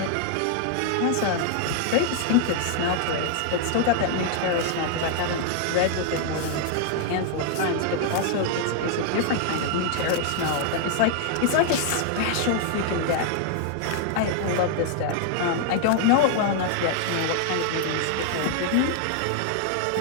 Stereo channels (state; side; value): different; both; correlation 0.00